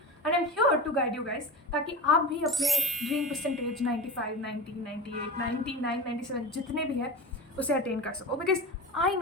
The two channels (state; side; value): normal; both; correlation 0.28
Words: and I'm here to guide you guys ताकि आप भी अपने dream percentage 95, 90, 98, 99, 97 जितने भी है उसे अटेन कर सको. बिकॉज आई